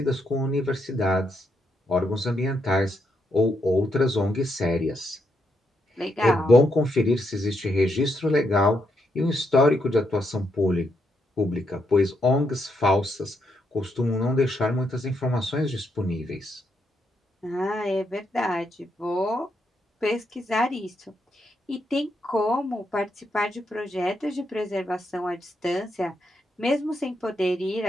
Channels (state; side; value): normal; both; correlation 0.79